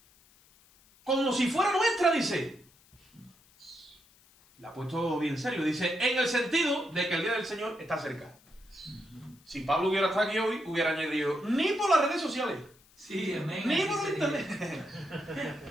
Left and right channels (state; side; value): noise; left; hiss, 29 dB below the sound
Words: como si fuera nuestra, dice. La ha puesto bien serio. Dice, en el sentido de que el día del Señor está cerca. Si Pablo hubiera estado aquí hoy, hubiera añadido, ni por las redes sociales. Sí, amén. Ni así por sería. internet.